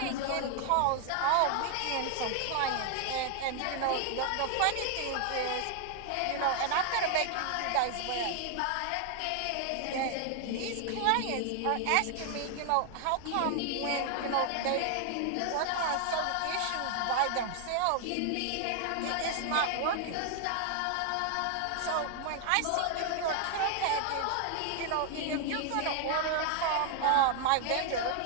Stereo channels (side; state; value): both; different; correlation 0.00